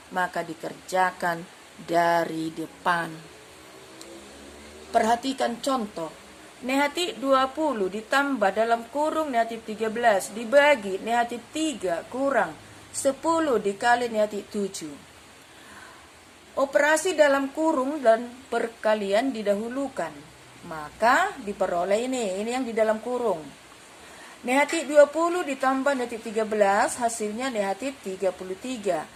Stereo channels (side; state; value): both; identical; correlation 1.00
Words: maka dikerjakan dari depan. Perhatikan contoh. Negatif 20 ditambah dalam kurung negatif 13 dibagi negatif 3 kurang 10 dikali negatif 7. Operasi dalam kurung dan perkalian didahulukan. Maka diperoleh ini yang di dalam kurung. Negatif 20 ditambah negatif 13 hasilnya negatif 33.